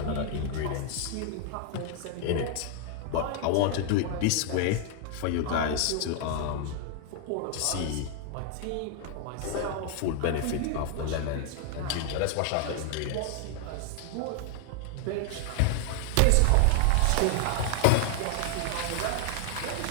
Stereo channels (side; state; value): both; different; correlation 0.00